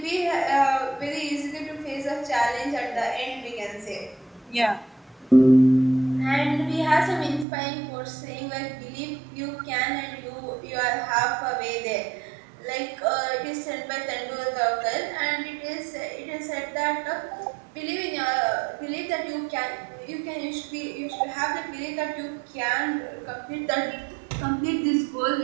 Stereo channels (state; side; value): drops out; left; at 7.5 s